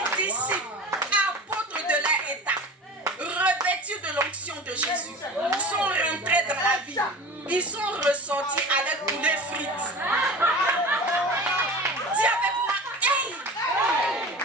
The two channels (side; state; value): both; normal; correlation 0.34